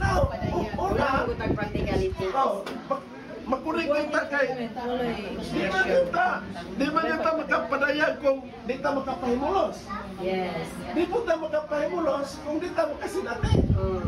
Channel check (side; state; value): both; identical; correlation 1.00